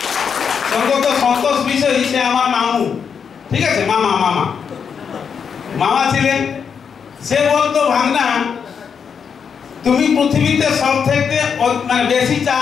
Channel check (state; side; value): quieter; right; 6.7 dB